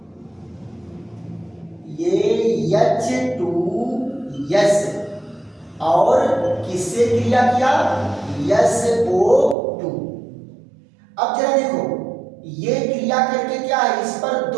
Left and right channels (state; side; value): drops out; left; at 9.6 s